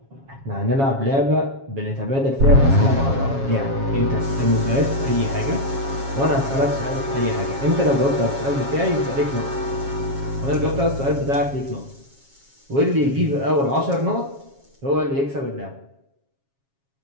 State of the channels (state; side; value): late; left; 7.3 ms